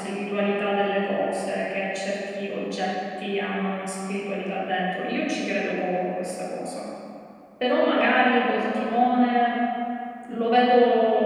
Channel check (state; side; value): identical; both; correlation 1.00